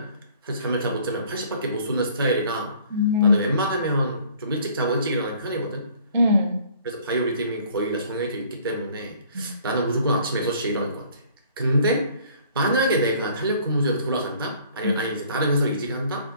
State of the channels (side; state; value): both; inverted; correlation -0.55